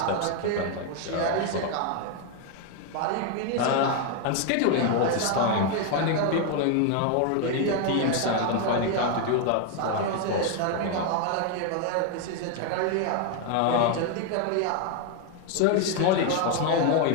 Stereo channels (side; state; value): both; different; correlation 0.01